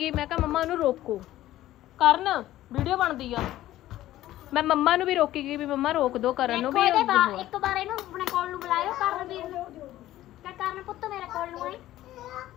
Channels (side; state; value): right; quieter; 14.5 dB